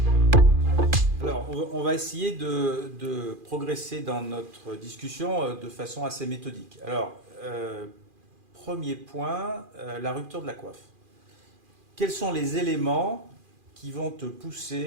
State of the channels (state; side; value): late; left; 2.4 ms